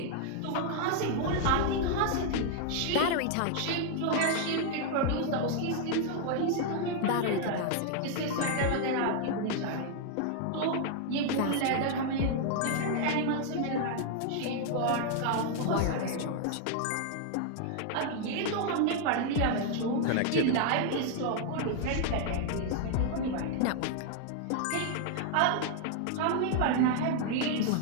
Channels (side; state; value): both; different; correlation 0.00